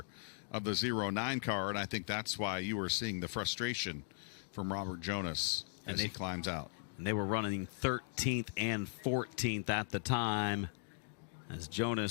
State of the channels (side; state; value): right; silent; digital silence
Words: of the 09 car, and I think that's why you were seeing the frustration from Robert Jonas as he climbs out. And they were running 13th and 14th at the time as